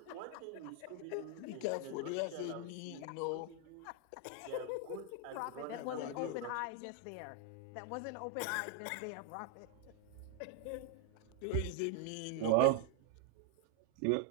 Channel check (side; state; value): both; different; correlation 0.00